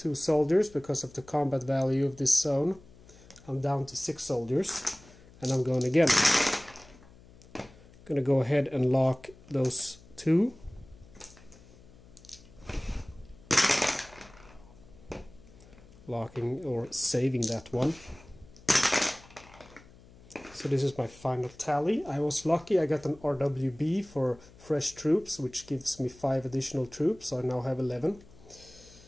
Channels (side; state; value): left; noise; hum, 23 dB below the sound